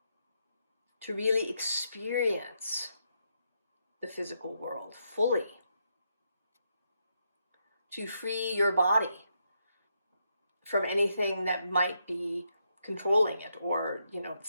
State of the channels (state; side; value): inverted; both; correlation -0.80